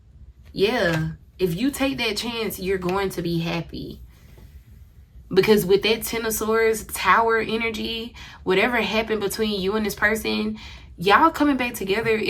Yeah. If you take that chance, you're going to be happy. Because with that Ten of Swords, Tower energy, whatever happened between you and this person, y'all coming back together,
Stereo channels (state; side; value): identical; both; correlation 1.00